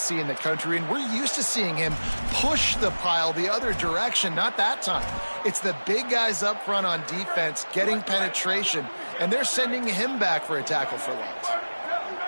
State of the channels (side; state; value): both; inverted; correlation -1.00